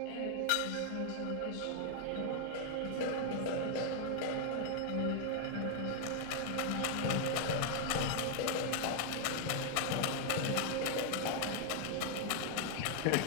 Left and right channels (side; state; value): both; different; correlation 0.00